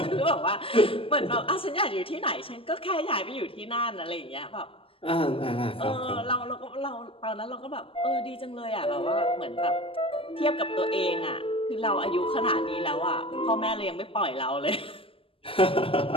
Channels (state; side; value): late; right; 0.26 ms